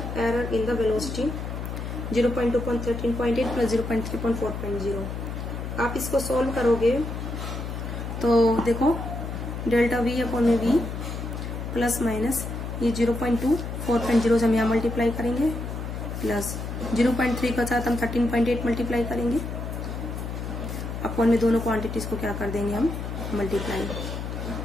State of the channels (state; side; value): noise; left; hum, 6 dB below the sound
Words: error in the velocity 0.2 upon 13.8 plus 0.3 upon 4.0। आप इसको सॉल्व करोगे तो देखो डेल्टा v अपॉन में v प्लस माइनस ये 0.2 4.0 से हम यहाँ मल्टीप्लाई करेंगे, प्लस 0.3 के साथ हम 13.8 मल्टीप्लाई करेंगे, अपॉन में दोनों क्वांटिटीज को क्या कर देंगे हम मल्टीप्लाई,